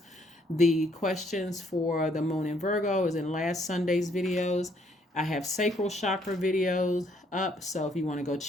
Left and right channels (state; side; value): normal; both; correlation 0.68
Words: The questions for the moon in Virgo is in last Sunday's videos. I have sacral chakra videos up, so if you want to go